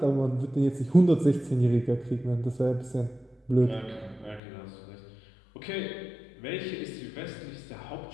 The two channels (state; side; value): drops out; right; at 4.4 s